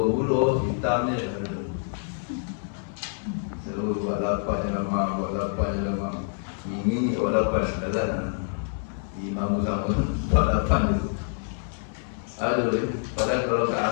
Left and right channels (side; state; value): right; silent; 60 dB below the other